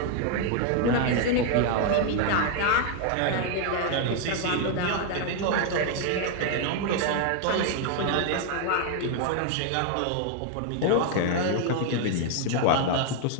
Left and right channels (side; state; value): both; different; correlation 0.00